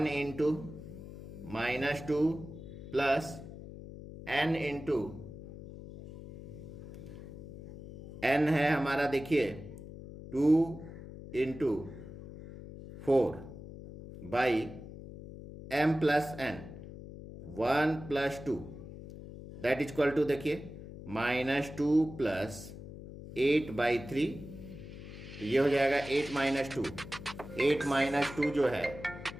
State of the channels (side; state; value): left; noise; hum, 13 dB below the sound